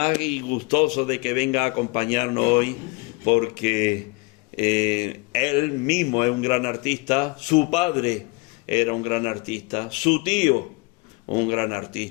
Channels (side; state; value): right; quieter; 27.0 dB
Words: y gustoso de que venga a acompañarnos hoy, porque él mismo es un gran artista, su padre era un gran artista, su tío un gran